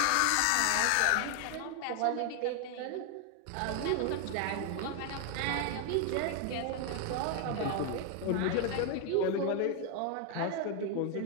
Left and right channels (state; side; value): different; both; correlation 0.00